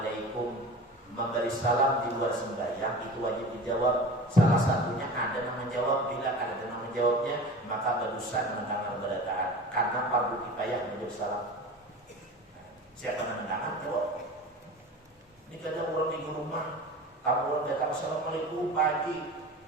Memberi salam di luar sembahyang itu wajib dijawab. Salah satunya ada yang menjawab. Bila ada yang menjawabnya, maka berdosa mendengar berataan. Karena fardu kifayah menjawab salam. Siapa yang mendengar jawab. Ini kadang orang di rumah, kamu orang datang assalamualaikum pagi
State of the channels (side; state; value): both; normal; correlation 0.36